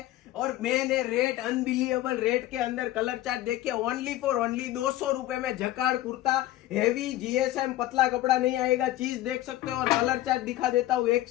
और मेन है रेट, अनबिलीवेबल रेट के अंदर कलर चार्ट देखिए। ओनली फॉर ओनली 200 रुपए में जकार्ड कुर्ता, हेवी जीएसएम, पतला कपड़ा नहीं आएगा। चीज देख सकते हो और कलर चार्ट दिखा देता हूँ, एक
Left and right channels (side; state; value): right; quieter; 15.0 dB